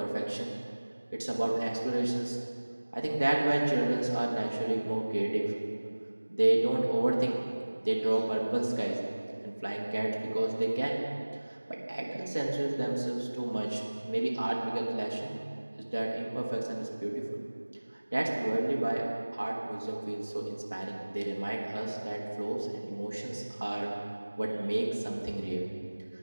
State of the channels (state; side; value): inverted; both; correlation -1.00